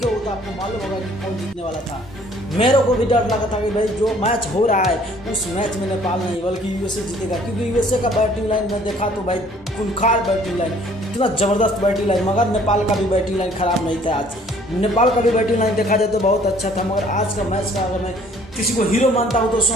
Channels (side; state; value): both; normal; correlation 0.57